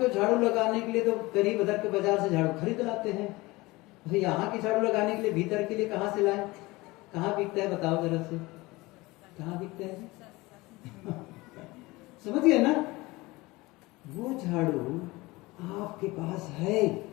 झाड़ू लगाने के लिए तो करीब उधर के बाजार से झाड़ू खरीद लाते हैं, भाई यहाँ की झाड़ू लगाने के लिए भीतर के लिए कहाँ से लाए, कहाँ बिकता है बताओ जरा से, कहाँ बिकता है समझ गए ना। वो झाड़ू आपके पास है,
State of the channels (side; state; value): right; quieter; 21.6 dB